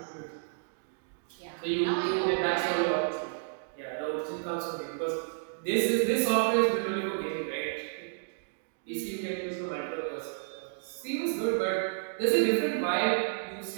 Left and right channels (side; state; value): left; silent; digital silence